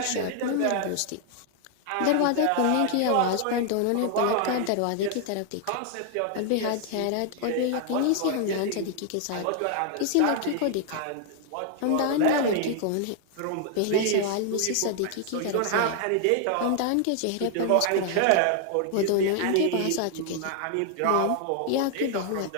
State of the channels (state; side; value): different; both; correlation 0.00